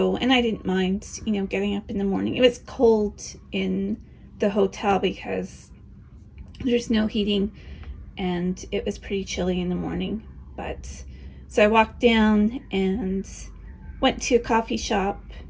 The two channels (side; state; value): both; identical; correlation 1.00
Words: I didn't mind, getting up in the morning. It was cold in the hotel because there's no heating, and it was pretty chilly in the morning. So I walked down and went to a coffee shop,